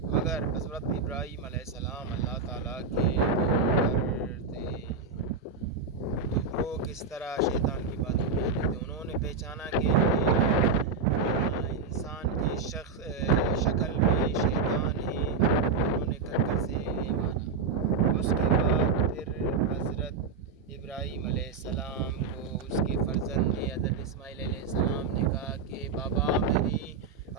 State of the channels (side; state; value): left; quieter; 4.7 dB